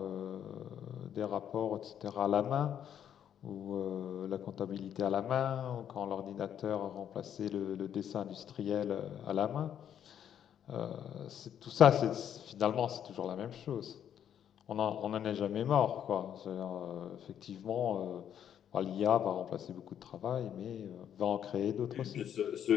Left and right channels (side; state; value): right; quieter; 9.5 dB